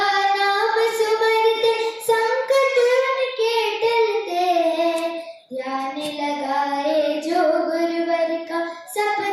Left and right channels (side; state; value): both; identical; correlation 1.00